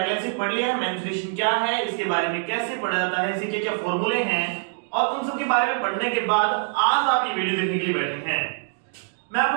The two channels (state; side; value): silent; left; digital silence